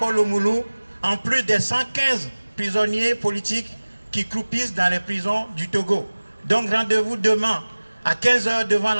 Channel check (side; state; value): both; inverted; correlation -1.00